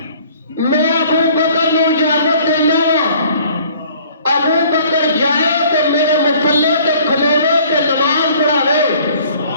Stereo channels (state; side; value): inverted; both; correlation -0.54